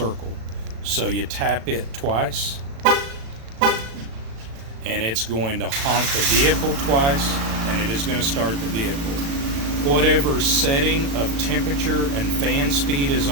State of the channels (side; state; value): left; late; 36 ms